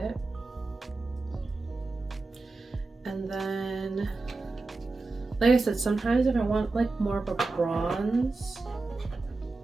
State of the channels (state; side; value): quieter; left; 3.5 dB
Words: And then, like I said, sometimes if I want like more of a bronze